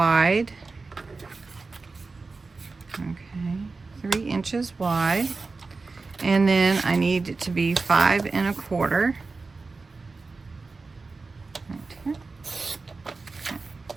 Okay, 3 inches wide. And then I need it to be 5 1/4. Right here. Okay.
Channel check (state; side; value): quieter; left; 4.0 dB